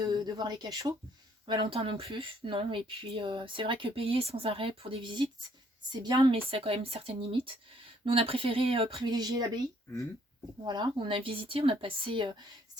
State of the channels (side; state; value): both; normal; correlation 0.65